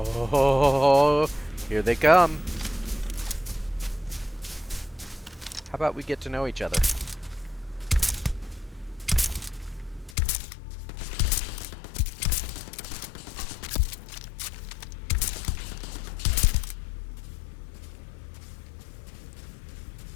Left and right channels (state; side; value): drops out; right; at 10.2 s